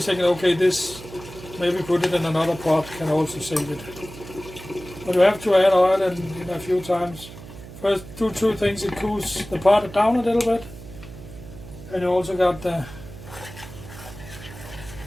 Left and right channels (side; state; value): right; noise; hum, 15 dB below the sound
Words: thinking, okay, this, maybe put it in another pot, can also save it. But you have to add oil and a few times. First, do two things. It cools the pot down a little bit, and you also got the,